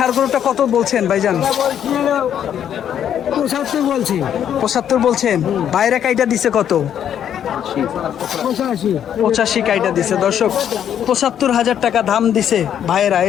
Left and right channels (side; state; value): right; quieter; 9.5 dB